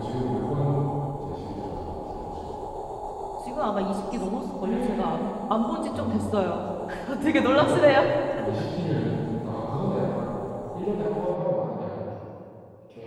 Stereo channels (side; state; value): both; identical; correlation 1.00